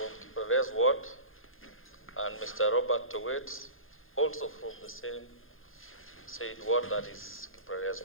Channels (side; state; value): right; late; 0.60 ms